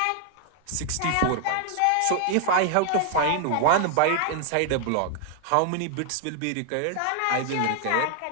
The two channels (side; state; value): both; different; correlation 0.00